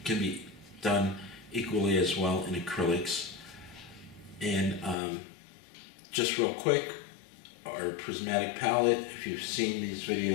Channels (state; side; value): drops out; right; at 5.0 s